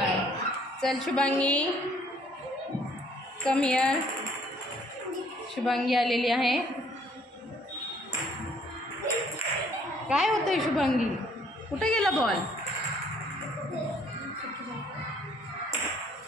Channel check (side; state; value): both; normal; correlation 0.62